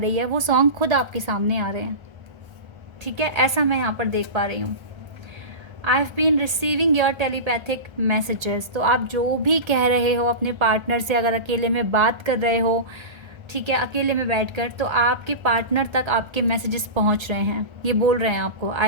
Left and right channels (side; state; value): left; late; 1.3 ms